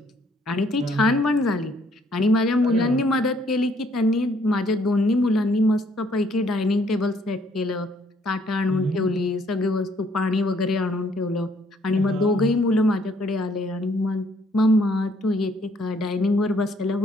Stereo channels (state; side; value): normal; both; correlation 0.66